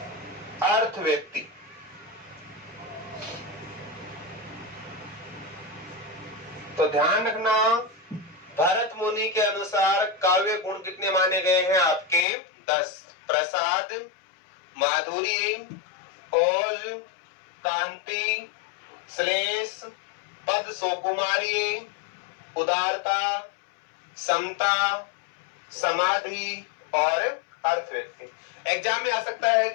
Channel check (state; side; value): drops out; right; at 12.2 s